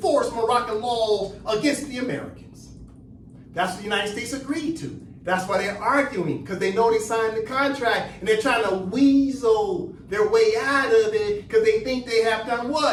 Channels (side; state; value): both; identical; correlation 1.00